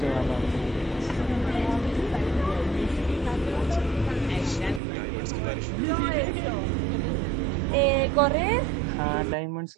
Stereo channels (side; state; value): left; drops out; at 4.8 s